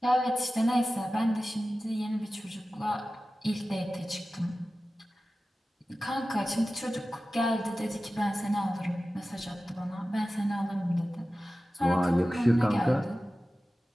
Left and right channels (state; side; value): normal; both; correlation 0.95